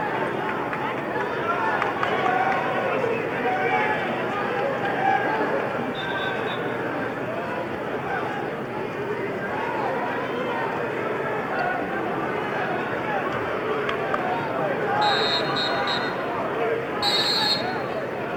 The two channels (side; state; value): both; identical; correlation 1.00